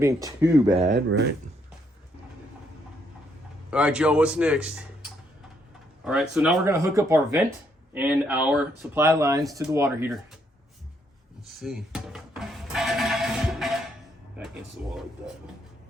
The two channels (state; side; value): normal; both; correlation 0.73